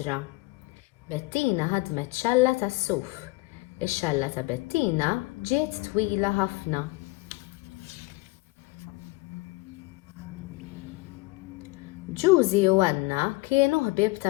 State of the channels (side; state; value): right; quieter; 22.6 dB